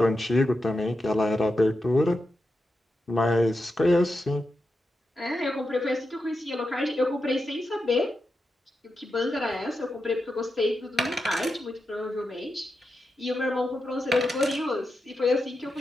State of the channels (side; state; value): both; normal; correlation 0.88